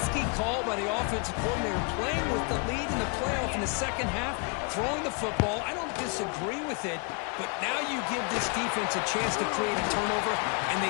call by the offensive coordinator, playing with the lead in the playoff in the second half, throwing the football. I don't disagree with it, but now you give this defense a chance to create a turnover, and they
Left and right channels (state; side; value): quieter; right; 35.3 dB